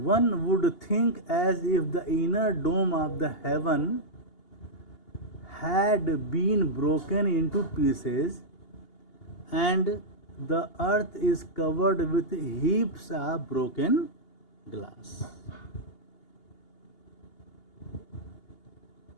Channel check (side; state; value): right; late; 2.8 ms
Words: would think as if the inner dome of the heaven had been broken into pieces and the earth is covered with heaps of broken glass.